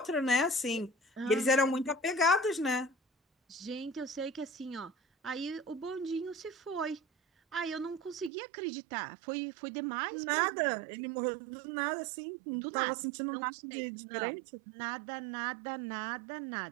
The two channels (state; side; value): drops out; left; at 8.3 s